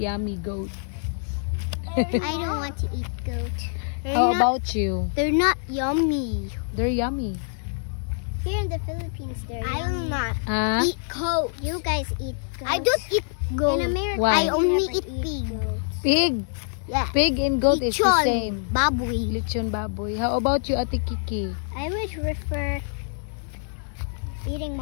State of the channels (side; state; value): right; silent; digital silence